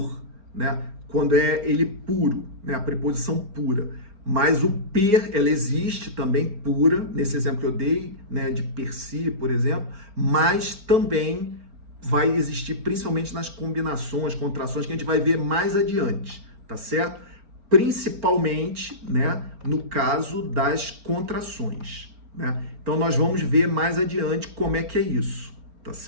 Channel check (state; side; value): late; left; 4.4 ms